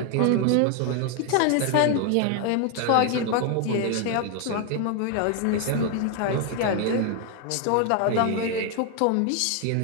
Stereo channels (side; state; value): both; different; correlation 0.01